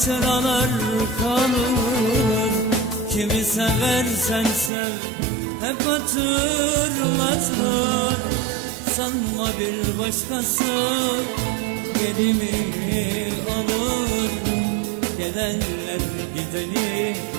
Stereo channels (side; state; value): left; drops out; at 4.7 s